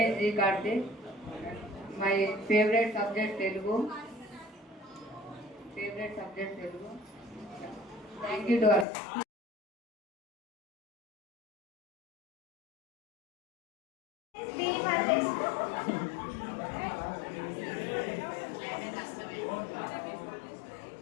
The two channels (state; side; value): drops out; right; at 8.8 s